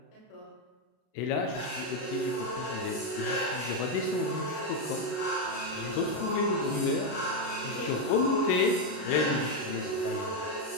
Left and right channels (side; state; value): right; late; 33 ms